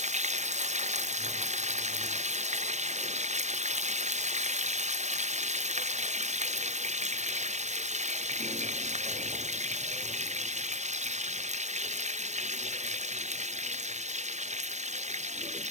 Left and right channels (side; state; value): left; late; 0.34 ms